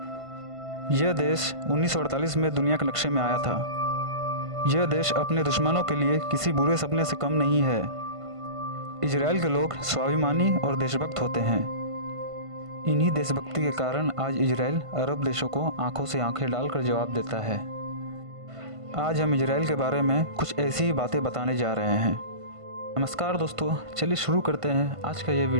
यह देश 1948 में दुनिया के नक्शे में आया था। यह देश अपने दुश्मनों के लिए किसी बुरे सपने से कम नहीं है। इजराइल के लोग स्वाभिमानी और देशभक्त होते हैं। इन्हीं देशभक्ति के कारण आज इजराइल अरब देशों को आंखों से आंखें डालकर जवाब देता है। आज हम इजराइल के बारे में कुछ ऐसी ही बातें बताने जा रहे हैं। नमस्कार दोस्तों, चलिए शुरू करते हैं आज का ये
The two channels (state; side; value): late; left; 1.5 ms